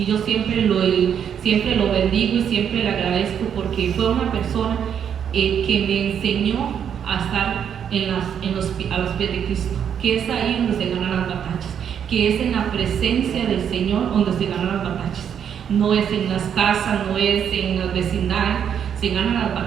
yo siempre lo bendigo y siempre le agradezco porque fue una persona que me enseñó a estar a los pies de Cristo, que es ahí donde se ganan las batallas, que es en la presencia del Señor donde se ganan las batallas. No es en las casas, no es en las vecindades, se ganan las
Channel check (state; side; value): quieter; left; 8.4 dB